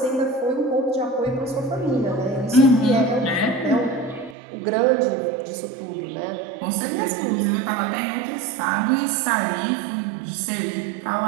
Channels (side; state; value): left; drops out; at 4.4 s